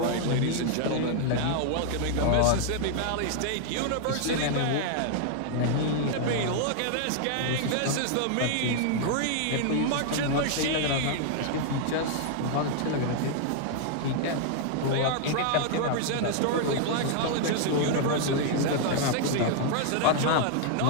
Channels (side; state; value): both; different; correlation 0.00